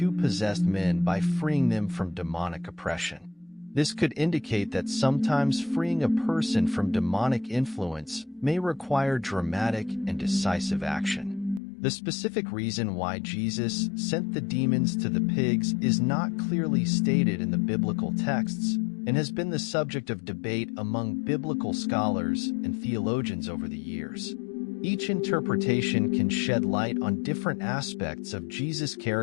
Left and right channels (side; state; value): right; drops out; at 11.6 s